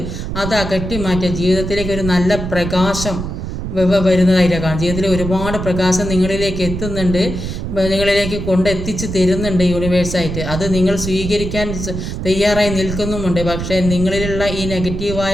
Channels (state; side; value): noise; right; rumble, 5 dB below the sound